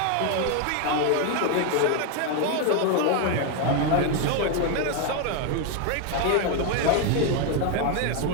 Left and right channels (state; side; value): different; both; correlation 0.01